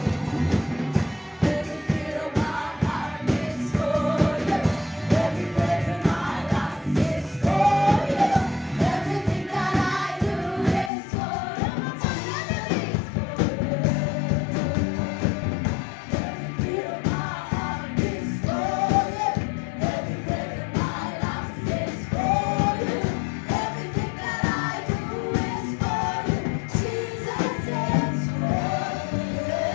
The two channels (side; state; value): right; drops out; at 10.9 s